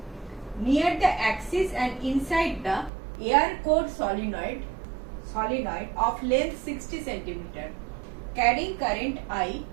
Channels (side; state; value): left; drops out; at 2.9 s